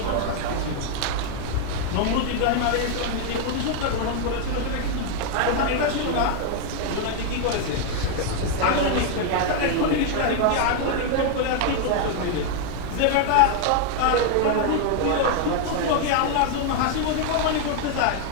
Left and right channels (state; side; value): different; both; correlation 0.00